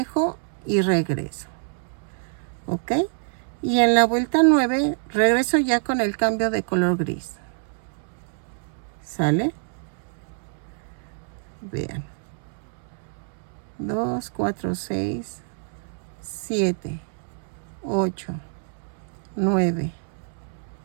y regreso. ¿Ok? Y en la vuelta 9 regreso ya con el cambio de color gris. ¿Sale? Vean. 2, 4, 6, 7, 8, 9,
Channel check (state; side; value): silent; left; 61 dB below the other